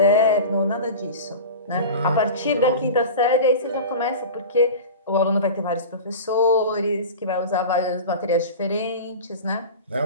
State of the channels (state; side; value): inverted; both; correlation -0.32